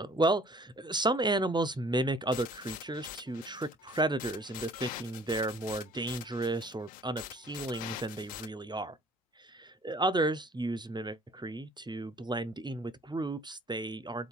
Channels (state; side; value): normal; both; correlation 0.54